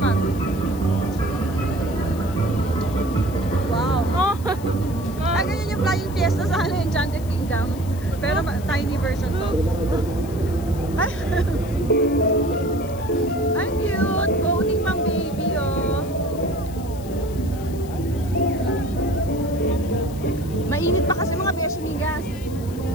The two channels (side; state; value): left; noise; hiss, 19 dB below the sound